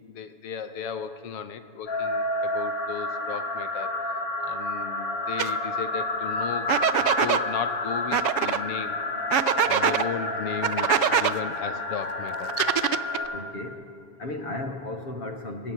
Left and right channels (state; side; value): late; right; 7.1 ms